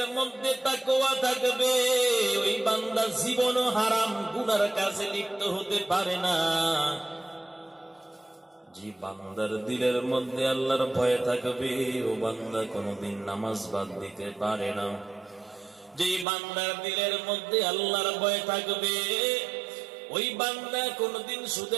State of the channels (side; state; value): left; drops out; at 16.2 s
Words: মধ্যে তাকওয়া থাকবে, ওই বান্দা জীবনও হারাম গুনার কাজে লিপ্ত হতে পারে না। যে বান্দার দিলের মধ্যে আল্লাহর ভয় থাকবে, ও বান্দা কোনদিন নামাজ বাদ দিতে পারে না। যে বান্দার দিলের মধ্যে আল্লাহর ভয় থাকবে, ওই বান্দা কোনদিন